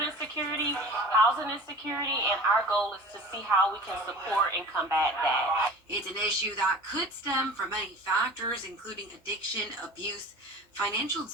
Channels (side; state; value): both; normal; correlation 0.40